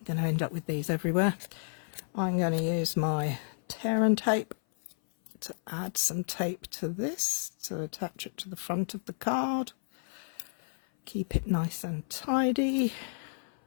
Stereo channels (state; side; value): silent; right; 56 dB below the other